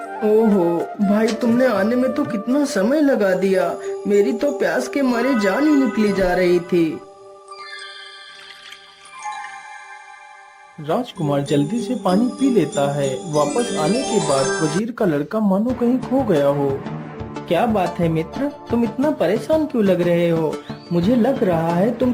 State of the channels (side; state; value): both; identical; correlation 1.00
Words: ओहो भाई, तुमने आने में तो कितना समय लगा दिया। मेरी तो प्यास के मारे जान ही निकली जा रही थी। राजकुमार जल्दी से पानी पी लेता है। वापस आने के बाद वजीर का लड़का मानो कहीं खो गया हो। क्या बात है मित्र, तुम इतना परेशान क्यों लग रहे हो? मुझे लग रहा है तुम